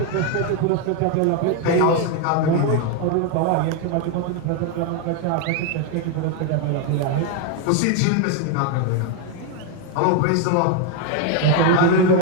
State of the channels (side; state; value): both; different; correlation 0.01